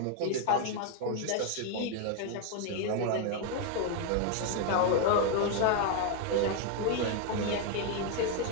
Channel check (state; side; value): different; both; correlation 0.01